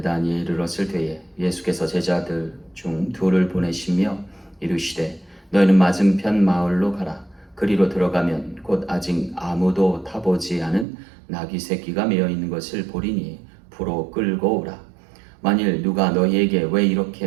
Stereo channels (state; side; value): drops out; left; at 10.9 s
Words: 이르렀을 때에 예수께서 제자들 중 둘을 보내시며 이르시되 너희는 맞은편 마을로 가라. 그리로 들어가면 곧 아직 아무도 타보지 않은 나귀 새끼가 메어 있는 것을 보리니 부로 끌고 오라. 만일 누가 너희에게 왜